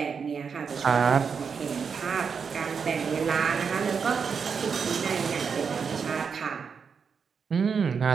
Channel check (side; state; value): left; quieter; 6.1 dB